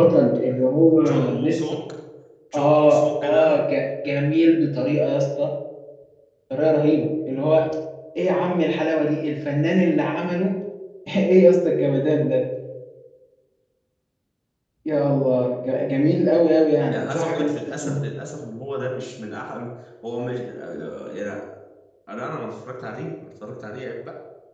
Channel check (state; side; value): identical; both; correlation 1.00